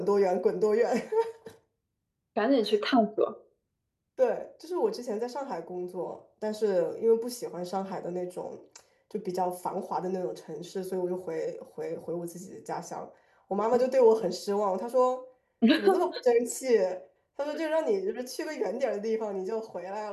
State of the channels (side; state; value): both; identical; correlation 1.00